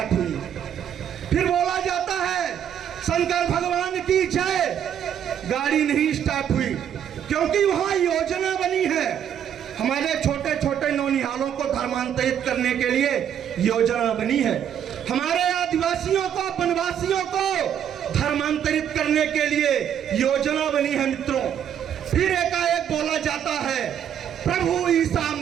हुई। फिर बोला जाता है शंकर भगवान की जय, गाड़ी नहीं स्टार्ट हुई, क्योंकि वहां योजना बनी है। हमारे छोटे छोटे नौनिहालों को धर्मांतरित करने के लिए योजना बनी है। हमारे आदिवासियों को, वनवासियों को धर्मांतरित करने के लिए योजना बनी है। मित्रों, फिर एकाएक बोला जाता है प्रभु ईसा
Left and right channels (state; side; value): quieter; left; 9.2 dB